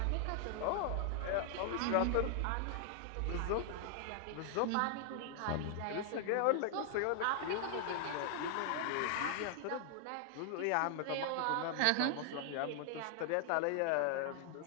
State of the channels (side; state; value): both; different; correlation 0.00